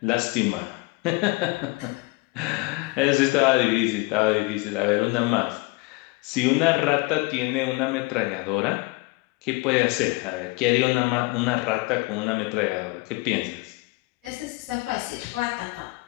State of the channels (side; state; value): right; quieter; 24.0 dB